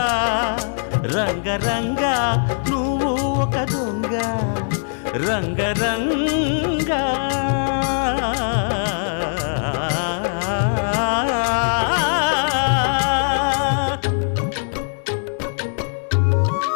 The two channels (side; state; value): right; silent; digital silence